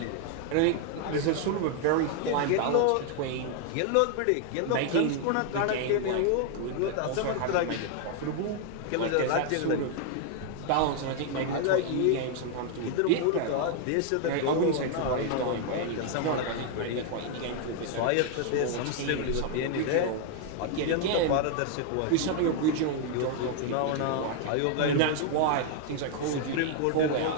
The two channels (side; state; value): both; different; correlation 0.00